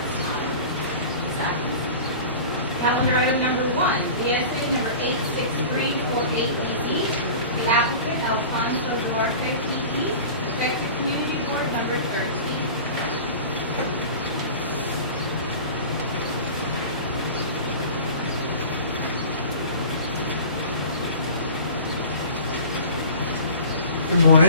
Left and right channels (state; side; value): inverted; both; correlation -0.38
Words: time. Zach? Calendar item number 1, BSA number 86348EZ. The applicant Alfonso Duarte, PE, effective community board number 13. Good